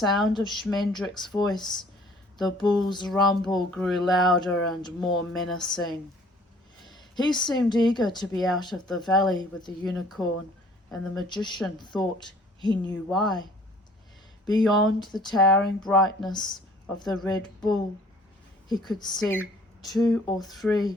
of Schmendrick's voice, the bull's rumble grew louder and more menacing. He seemed eager to be out of the valley with the unicorn, and the magician thought he knew why. Beyond the towering brightness of the Red Bull, he could see 2 or 3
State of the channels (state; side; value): normal; both; correlation 0.55